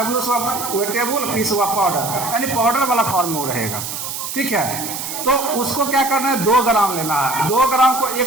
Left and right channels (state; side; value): noise; right; hiss, 6 dB below the sound